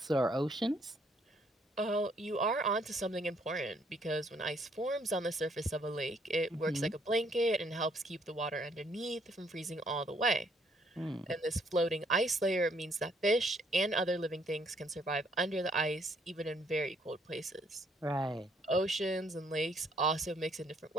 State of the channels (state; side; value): normal; both; correlation 0.67